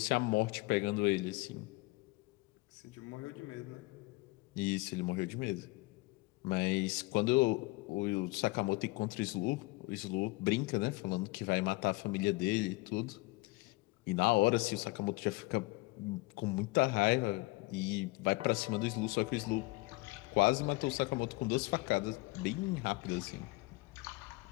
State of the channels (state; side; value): quieter; right; 23.2 dB